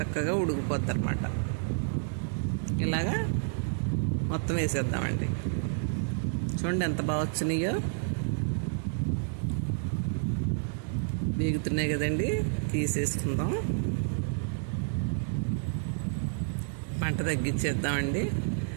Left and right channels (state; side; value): silent; left; digital silence